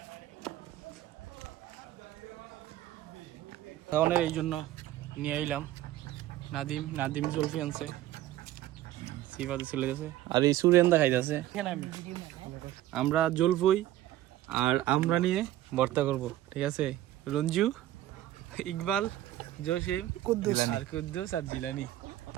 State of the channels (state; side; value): quieter; left; 14.2 dB